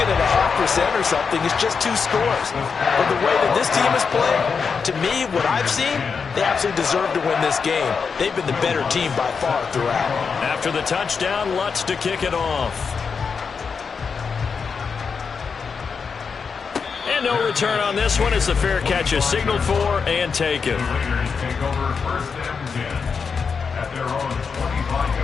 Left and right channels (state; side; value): quieter; right; 5.7 dB